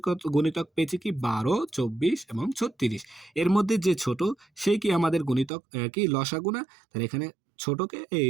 গুণিতক পেয়েছি কি 12, 24 এবং 36। এর মধ্যে যে ছোট সেই কি আমাদের গুণিতক কি লসাগু না? তাহলে এখানে ছোটকে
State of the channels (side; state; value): left; drops out; at 5.5 s